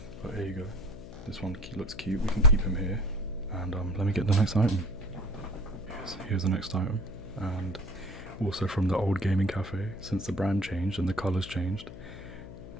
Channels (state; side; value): noise; left; hum, 13 dB below the sound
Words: but here you go. This one looks cute, we can keep him here, and let me get the next item. Here's the next item, and also from the old gaming cafe, since the brand changed and the colours changed.